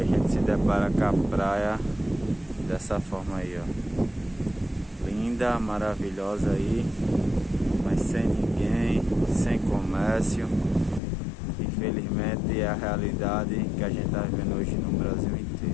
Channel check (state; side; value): drops out; right; at 11.0 s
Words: gente se depara com a praia dessa forma aí, ó. Linda, maravilhosa aí, mas sem ninguém, sem comércio. Infelizmente é a realidade que a gente tá vivendo hoje no Brasil